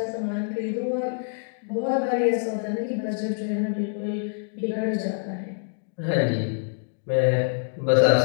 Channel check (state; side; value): silent; right; digital silence